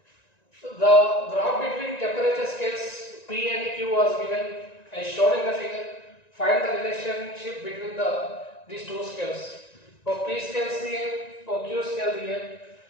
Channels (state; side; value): late; right; 1.9 ms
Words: the graph between temperature scales P and Q was given as shown in the figure find the relationship between these two scales तो P scale दिए और Q scale दिए